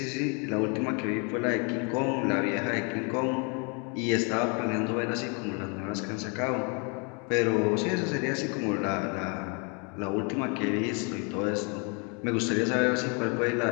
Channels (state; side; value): quieter; right; 34.7 dB